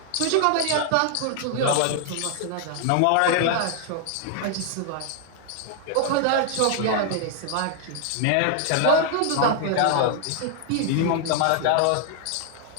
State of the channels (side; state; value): both; different; correlation 0.00